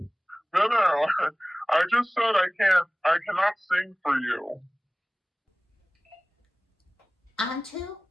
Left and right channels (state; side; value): normal; both; correlation 0.98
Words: No, I just said I cannot sing for you. On to